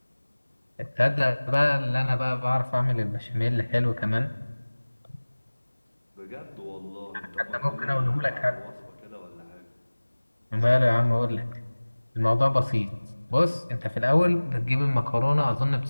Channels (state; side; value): inverted; both; correlation -1.00